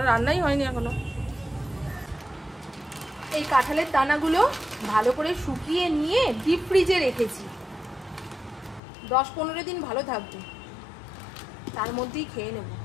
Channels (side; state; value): right; drops out; at 8.8 s